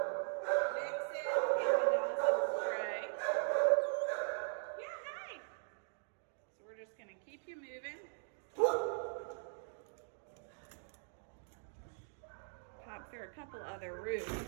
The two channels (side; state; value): left; silent; digital silence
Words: Pop through a couple other